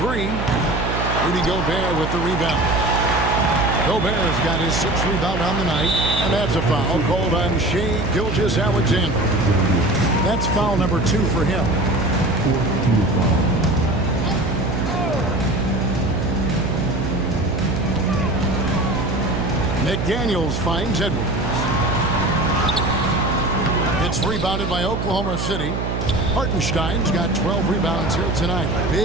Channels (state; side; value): noise; right; hum, 2 dB below the sound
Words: Rudy Gobert with the rebound. Gobert's got his 6th rebound on the night, and that's a foul called on Shai Gilgeous-Alexander. That's foul number 2 for him. McDaniels finds Edwards. It's rebounded by Oklahoma City. Hartenstein's got 12 rebounds here tonight.